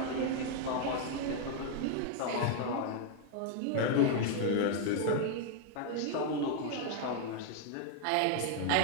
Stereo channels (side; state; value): both; different; correlation 0.00